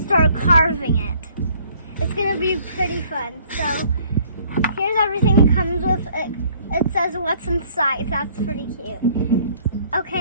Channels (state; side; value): inverted; both; correlation -0.59